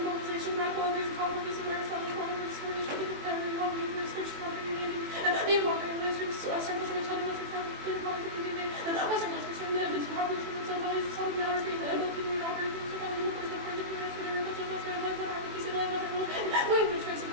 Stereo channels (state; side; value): late; left; 21 ms